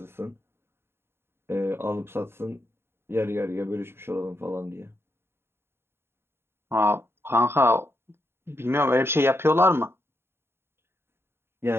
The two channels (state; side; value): late; left; 0.11 ms